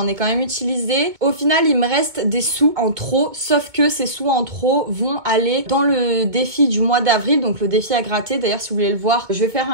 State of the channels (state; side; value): late; left; 2.1 ms